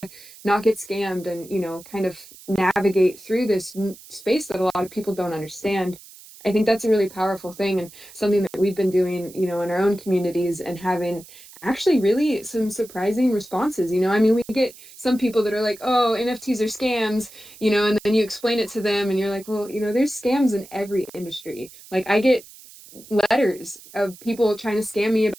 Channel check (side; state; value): right; noise; hiss, 20 dB below the sound